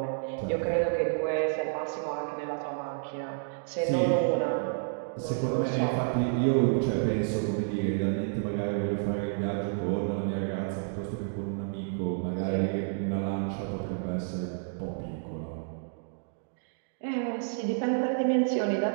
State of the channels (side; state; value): left; silent; digital silence